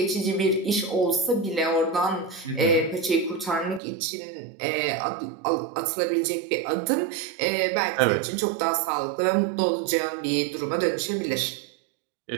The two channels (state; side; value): drops out; left; at 3.8 s